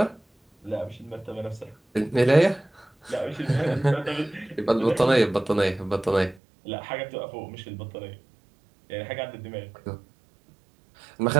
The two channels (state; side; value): drops out; left; at 6.4 s